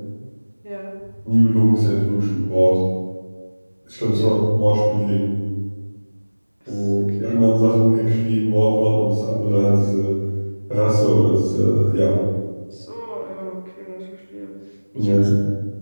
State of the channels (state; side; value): inverted; both; correlation -1.00